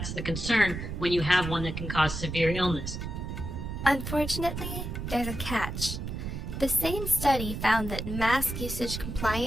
the concern when you have one that can cause severe illness. Unfortunately, there's a catch. The same study found that mask usage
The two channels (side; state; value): right; noise; rumble, 6 dB below the sound